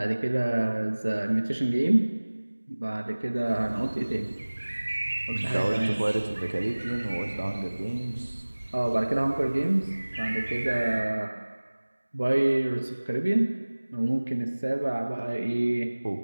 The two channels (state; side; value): inverted; both; correlation -1.00